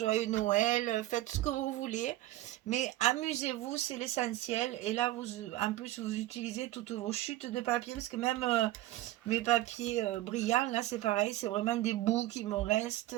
Noël, faites ce que vous voulez. Mais amusez-vous, c'est l'essentiel. Et là, vous, en plus, vous utilisez toutes vos chutes de papier, parce que même mes papiers brillants, là, c'est pareil, c'est vraiment des bouts qui me restent,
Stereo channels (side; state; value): left; quieter; 15.8 dB